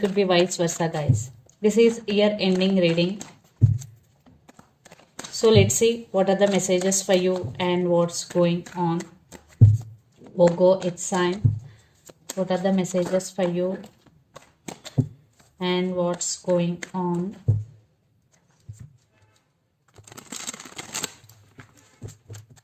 be vice versa, guys. This is year ending reading. So let's see what are the messages for you and what's going on. Virgo, it's time. What are the messages for you and what's going on?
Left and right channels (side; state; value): both; identical; correlation 1.00